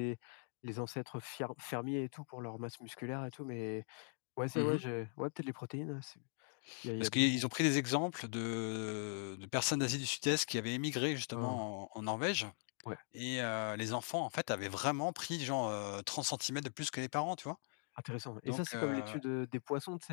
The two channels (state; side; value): silent; right; 51 dB below the other